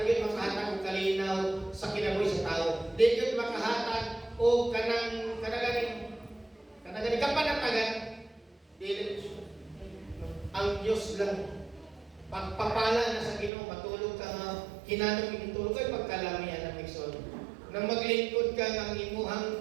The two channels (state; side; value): drops out; left; at 13.5 s